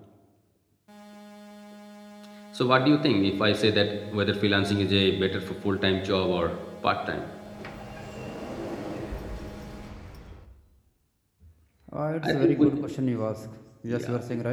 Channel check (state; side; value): identical; both; correlation 1.00